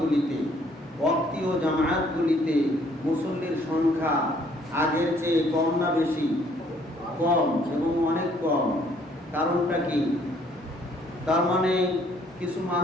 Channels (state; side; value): normal; both; correlation 0.63